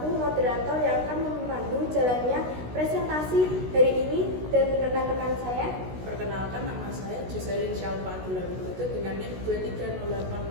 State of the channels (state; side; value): late; left; 16 ms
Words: moderator yang akan memandu jalannya presentasi hari ini, dan rekan-rekan saya. Perkenalkan, nama saya Joselin Syalfa Abdullah Widodo dengan NIM